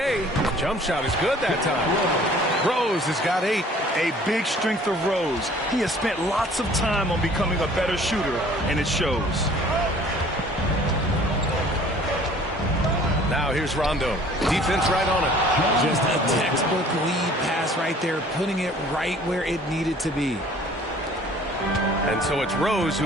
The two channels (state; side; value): normal; both; correlation 0.52